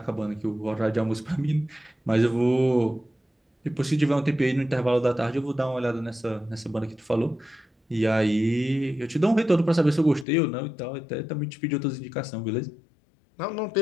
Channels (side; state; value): right; drops out; at 10.2 s